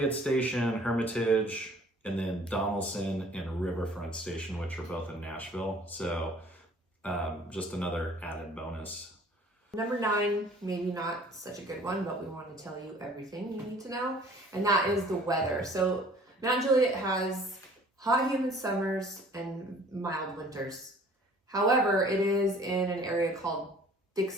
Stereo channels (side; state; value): both; normal; correlation 0.52